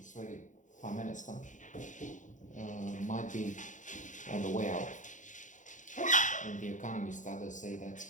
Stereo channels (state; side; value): late; right; 0.36 ms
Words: Prime Minister, might be on the way out. And the economists, others say that's